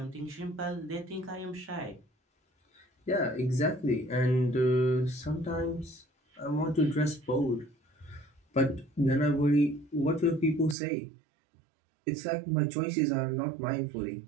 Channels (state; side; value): drops out; left; at 10.8 s